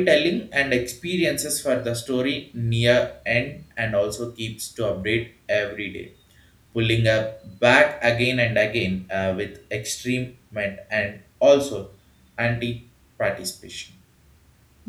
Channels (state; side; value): identical; both; correlation 1.00